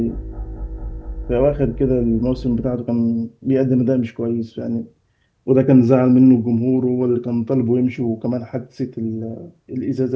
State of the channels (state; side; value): identical; both; correlation 1.00